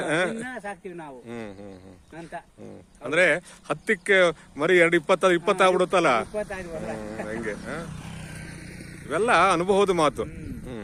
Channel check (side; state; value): both; identical; correlation 1.00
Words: ಸಾಕ್ತಿವಿ ನಾವು ಅಂತ. ಅಂದ್ರೆ 10ಕ್ಕೆ ಮರಿ 20 ಆಗ್ಬಿಡುತ್ತಲ್ಲ ಹಂಗೆ. ಇವೆಲ್ಲ ಅನುಭವದ ಮಾತು.